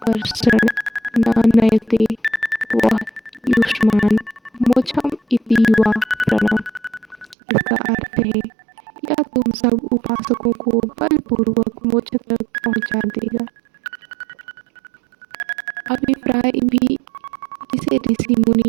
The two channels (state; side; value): drops out; left; at 7.4 s